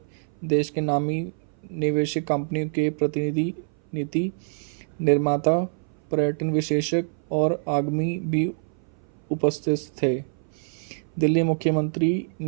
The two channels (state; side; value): silent; left; 58 dB below the other